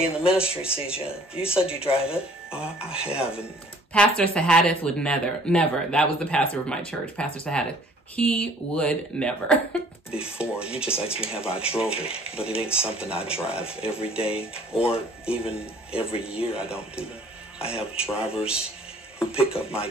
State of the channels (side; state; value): both; normal; correlation 0.55